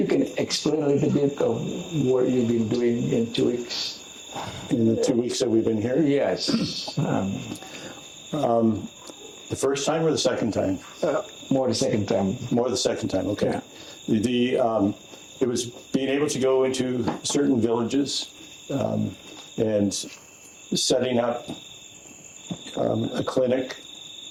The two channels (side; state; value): both; identical; correlation 1.00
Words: can explain a little bit of what you've been doing in 2 weeks. In the 2 weeks that we've been here? Yes. The first time or the second time? More the second time. More the second time, okay. Yeah. It was being able to go into certain villages and setting up a clinic